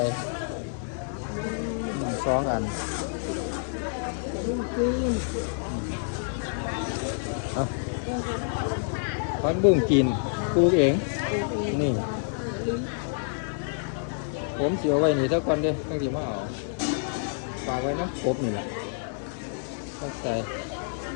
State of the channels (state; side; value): silent; right; digital silence